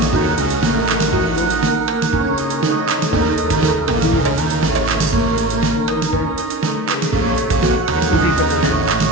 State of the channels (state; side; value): normal; both; correlation 0.33